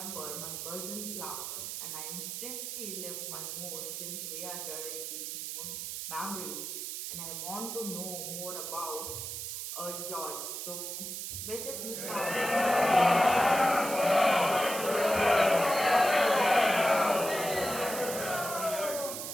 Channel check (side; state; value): right; noise; hiss, 6 dB below the sound